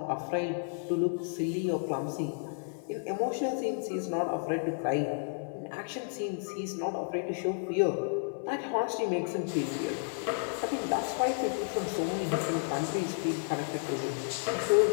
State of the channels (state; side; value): silent; right; digital silence